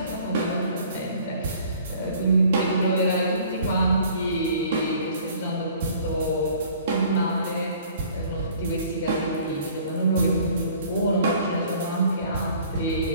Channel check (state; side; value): inverted; both; correlation -0.53